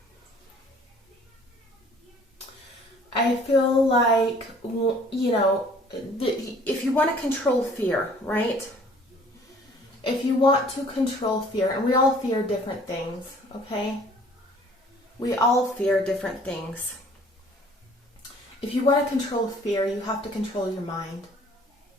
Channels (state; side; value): normal; both; correlation 0.55